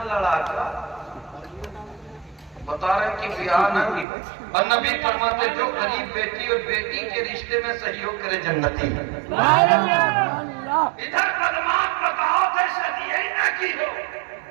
लड़ाका बता रहे कि बिहार न की हो। और नबी फरमाते जो गरीब बेटी और बेटी के रिश्ते में सहयोग करे जन्नती है। इधर बदमाश बताओ थे शादी यही ना की हो,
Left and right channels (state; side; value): drops out; left; at 4.0 s